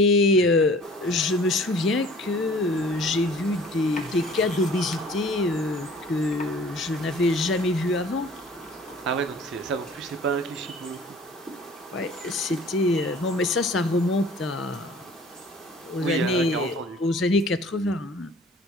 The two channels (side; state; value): both; normal; correlation 0.49